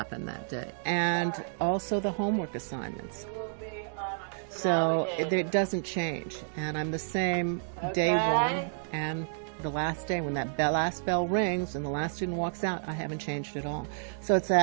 that day. And also the homework assignments. So it doesn't change. And I'm the same day one and the last day. When that last bell rings and the last student walks out, I haven't changed at all. So it's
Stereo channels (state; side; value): silent; left; digital silence